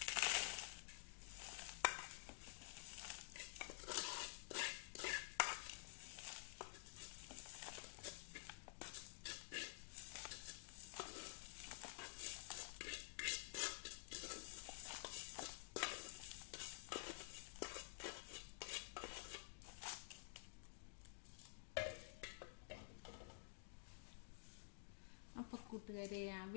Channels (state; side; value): silent; right; digital silence